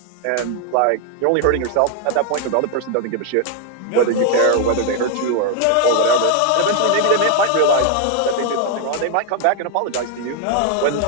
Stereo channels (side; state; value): both; different; correlation 0.01